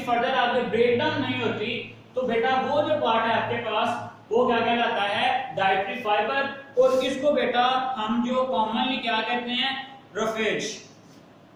फर्दर आगे ब्रेकडाउन नहीं होती, तो बेटा वो जो पार्ट है आपके पास वो क्या कहलाता है, डाइटरी फाइबर। और इसको बेटा हम जो कॉमनली क्या कहते हैं, रफेज।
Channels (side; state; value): both; identical; correlation 1.00